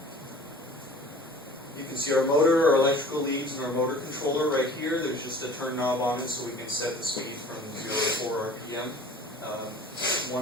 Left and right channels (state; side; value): normal; both; correlation 0.45